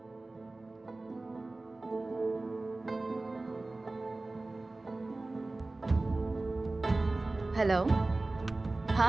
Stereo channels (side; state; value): left; quieter; 3.1 dB